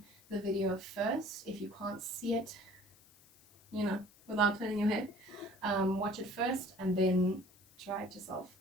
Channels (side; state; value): left; noise; hiss, 27 dB below the sound